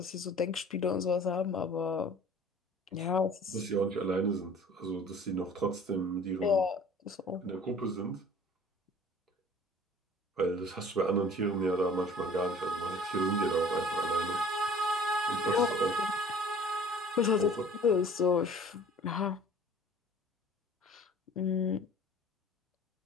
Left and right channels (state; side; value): normal; both; correlation 0.48